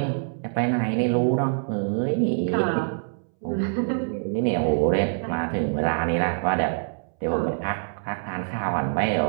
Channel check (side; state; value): left; silent; 62 dB below the other